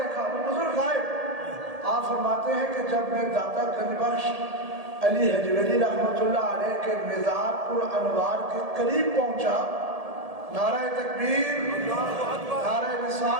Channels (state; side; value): late; left; 1.7 ms